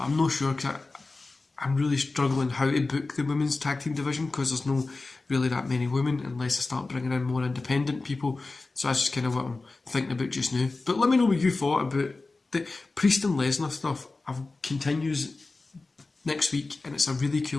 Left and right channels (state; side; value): quieter; right; 3.5 dB